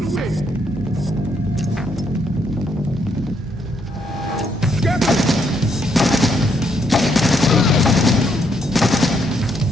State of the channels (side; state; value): both; normal; correlation 0.74